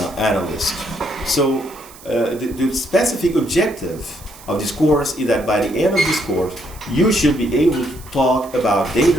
analyst. So the specific objective of this course is that by the end of this course, you should be able to talk about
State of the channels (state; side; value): noise; right; hiss, 21 dB below the sound